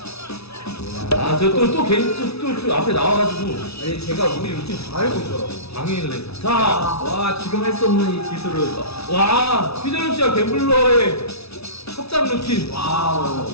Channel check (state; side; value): late; right; 0.79 ms